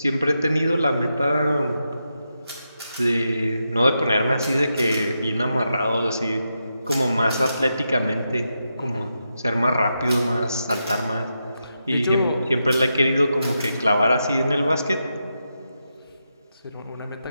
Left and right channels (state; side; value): inverted; both; correlation -0.86